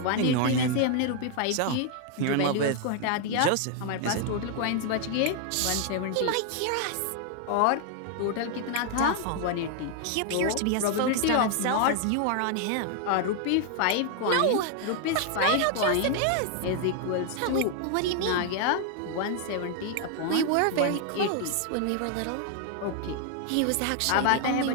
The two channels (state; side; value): different; both; correlation 0.00